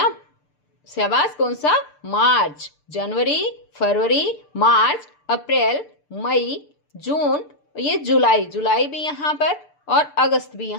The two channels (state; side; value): late; right; 6.8 ms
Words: शाबाश, कौन सा? मार्च। जनवरी, फरवरी, मार्च, अप्रैल, मई, जून, ये जुलाई, जुलाई भी यहाँ पर और अगस्त भी